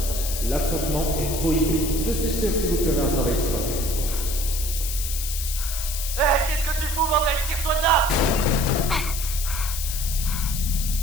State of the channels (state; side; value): noise; left; hiss, 5 dB below the sound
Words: L'affrontement est prohibé. Je suis sûr que vous ferez un travail splendide. Hé, qu'est-ce que tu fous, bordel? Tire-toi de là!